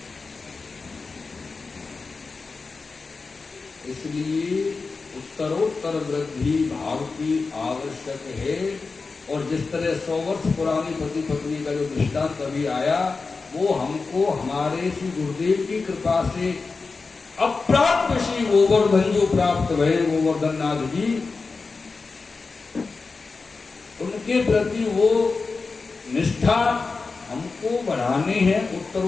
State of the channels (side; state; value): right; quieter; 4.3 dB